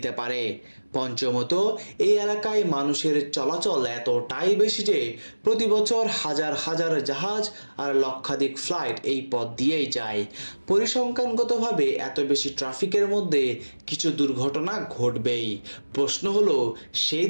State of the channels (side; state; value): both; inverted; correlation -1.00